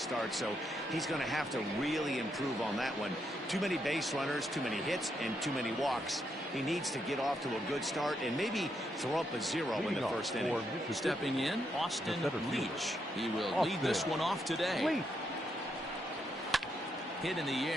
so he's going to have to really improve on that one. Too many base runners, too many hits, and too many walks. He needs to get off to a good start and maybe throw up a 0 in the first inning. Stepping in, Austin Leach. He will lead this one off today. Hit in the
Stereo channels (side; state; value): both; normal; correlation 0.79